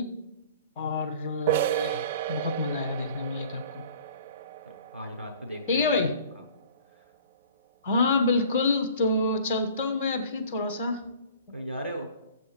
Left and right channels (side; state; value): both; inverted; correlation -0.48